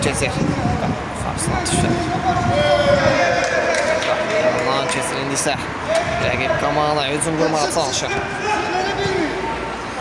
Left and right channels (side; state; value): both; identical; correlation 1.00